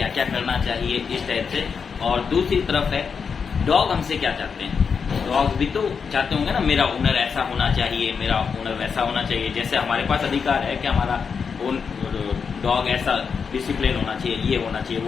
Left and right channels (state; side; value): quieter; right; 6.0 dB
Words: क्या करना चाहिए, इस टाइप से। और दूसरी तरफ है डॉग हमसे क्या चाहते हैं। डॉग भी तो चाहते होंगे ना, मेरा ओनर ऐसा होना चाहिए, मेरा ओनर वैसा होना चाहिए। जैसे हमारे पास अधिकार है कि हमारा डॉग ऐसा डिसिप्लिन होना चाहिए, ये होना चाहिए,